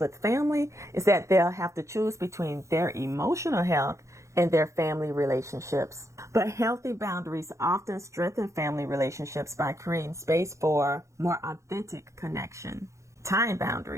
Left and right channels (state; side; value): late; left; 0.14 ms